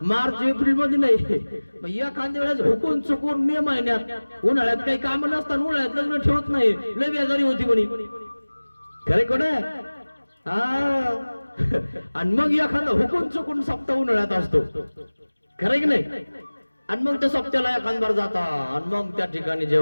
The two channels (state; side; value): inverted; both; correlation -1.00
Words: मार्च एप्रिल मध्ये नाही. मग एखाद्या वेळेस हुकून चुकून मे महिन्यात, उन्हाळ्यात काही काम नसतात, उन्हाळ्यात लग्न ठेवत नाही, लय बेजारी होती म्हणे. खरे कोण आहे. हा आणि मग एखादा हुकून चुकून सप्ताह उन्हाळ्यात असतो, खरं की नाही. आणि मग त्या सप्त्याला एखादबार जाता आणि मग त्या ठिकाणी